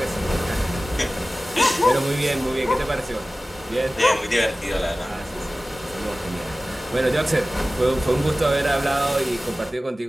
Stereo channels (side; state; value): both; normal; correlation 0.96